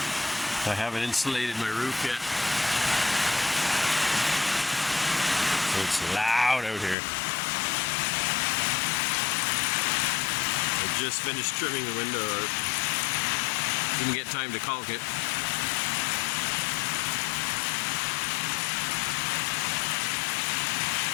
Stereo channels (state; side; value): drops out; right; at 7.0 s